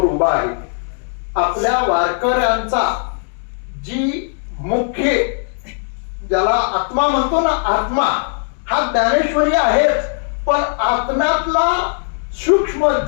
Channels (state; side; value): silent; right; digital silence